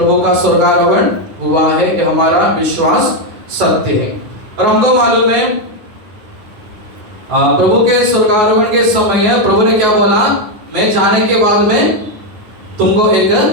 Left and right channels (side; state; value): left; late; 9.4 ms